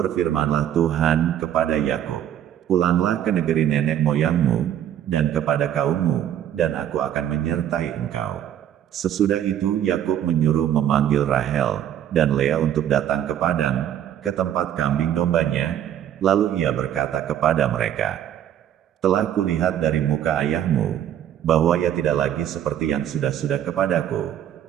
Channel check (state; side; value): quieter; left; 10.5 dB